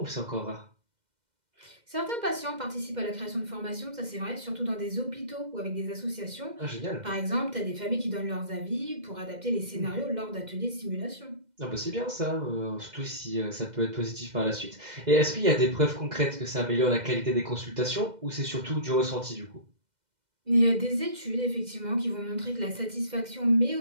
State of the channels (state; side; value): late; left; 2.0 ms